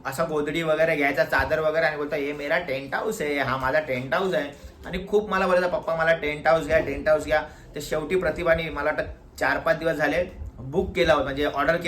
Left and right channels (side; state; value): both; identical; correlation 1.00